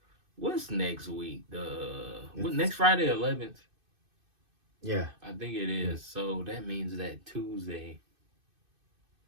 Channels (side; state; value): left; late; 2.6 ms